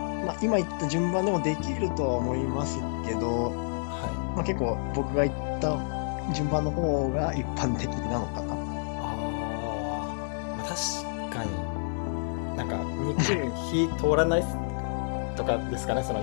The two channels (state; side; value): silent; right; digital silence